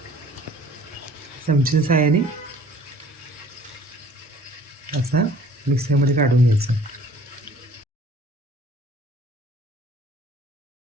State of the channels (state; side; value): normal; both; correlation 0.52